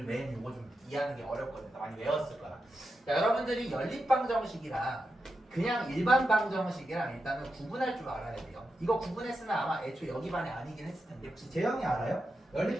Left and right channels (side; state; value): both; normal; correlation 0.88